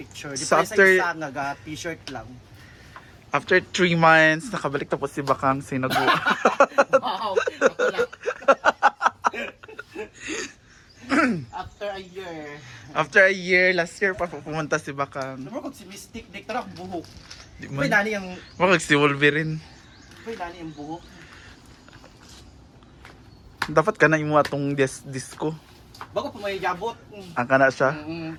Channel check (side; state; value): both; identical; correlation 1.00